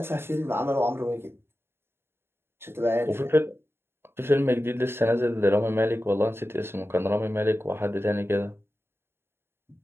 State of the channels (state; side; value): late; left; 0.11 ms